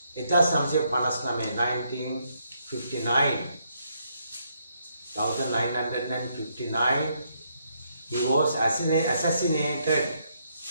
1959 he was assassinated.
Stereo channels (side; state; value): both; inverted; correlation -0.75